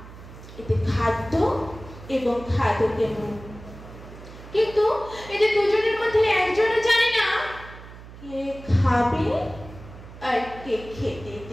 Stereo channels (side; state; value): right; noise; hum, 16 dB below the sound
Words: এতে খাদ্য এবং খাদকের মুখ, কিন্তু এদের দুজনের মধ্যে একজনও জানে না কে খাবে আর কে খেতে